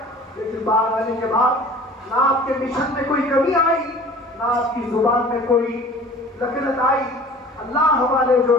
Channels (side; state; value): both; normal; correlation 0.45